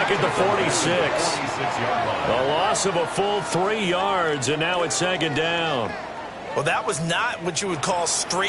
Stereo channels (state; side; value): identical; both; correlation 1.00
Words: at the 46. A loss of a full 3 yards, and now it's 2nd down. Well, that was not what you would call